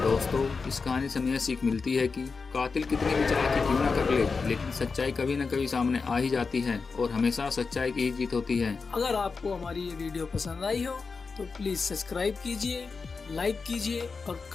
दोस्तों, इस कहानी से हमें सीख मिलती है कि कातिल कितनी भी चालाकी क्यों ना कर ले, लेकिन सच्चाई कभी न कभी सामने आ ही जाती है और हमेशा सच्चाई की ही जीत होती है। अगर आपको हमारी ये वीडियो पसंद आई हो तो प्लीज सब्सक्राइब कीजिए, लाइक कीजिए और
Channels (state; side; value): quieter; right; 4.7 dB